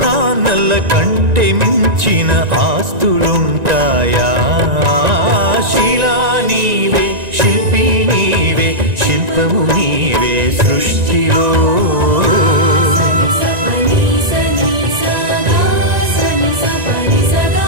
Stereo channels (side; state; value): left; late; 1.9 ms